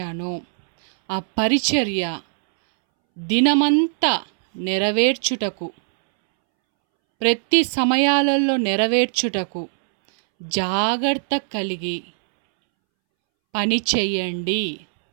ఆ పరిచర్య దినమంతా నెరవేర్చుటకు, ప్రతి సమయాలలో నెరవేర్చుటకు జాగ్రత్త కలిగి పని చెయ్యండి.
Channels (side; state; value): left; silent; 65 dB below the other